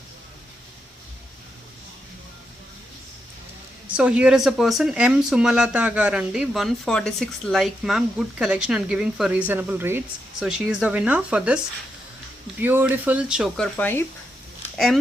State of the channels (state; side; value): normal; both; correlation 0.83